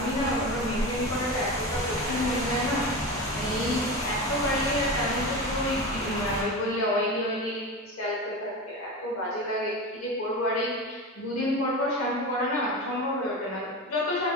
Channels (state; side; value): normal; both; correlation 0.25